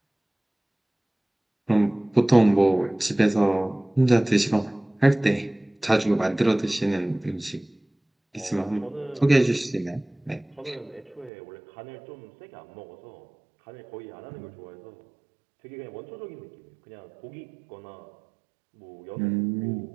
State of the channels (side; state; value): left; drops out; at 11.3 s